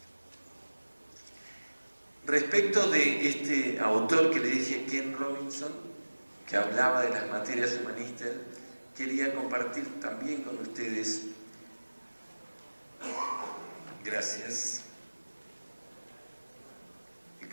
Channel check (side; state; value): both; inverted; correlation -1.00